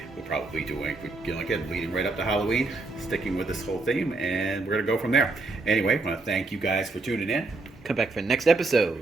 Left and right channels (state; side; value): quieter; left; 3.4 dB